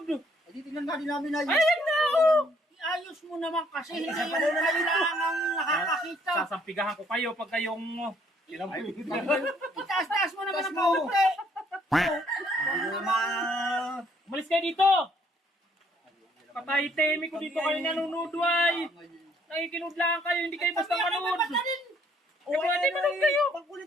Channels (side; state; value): both; normal; correlation 0.65